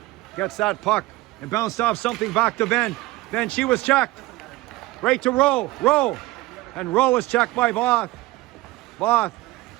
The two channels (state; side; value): quieter; left; 18.9 dB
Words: gets that puck and bounced off something back to Ben. Then she was checked. Right to Rowe. Rowe. And Rowe was checked by Voth. Voth